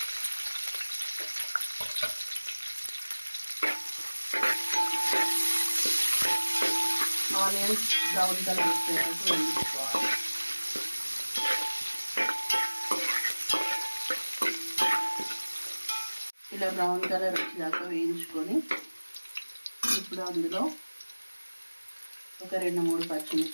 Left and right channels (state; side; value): inverted; both; correlation -1.00